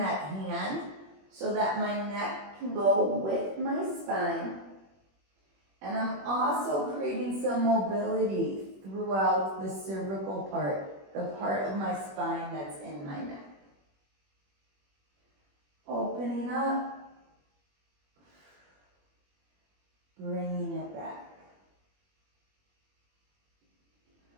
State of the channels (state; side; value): late; left; 21 ms